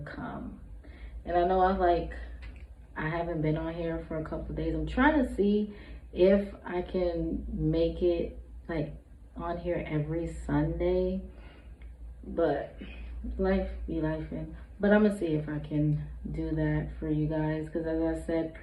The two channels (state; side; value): identical; both; correlation 1.00